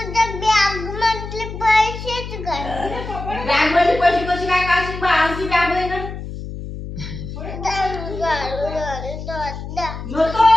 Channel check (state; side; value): noise; left; hum, 9 dB below the sound